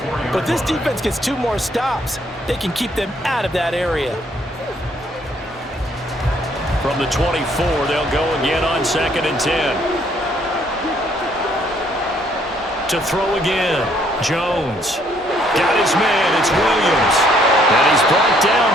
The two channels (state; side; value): normal; both; correlation 0.66